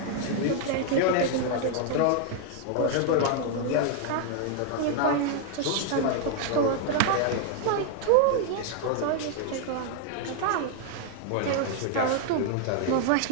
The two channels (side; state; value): both; different; correlation 0.00